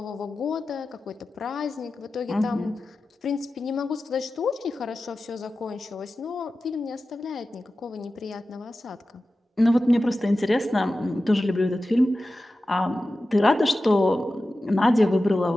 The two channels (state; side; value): normal; both; correlation 0.94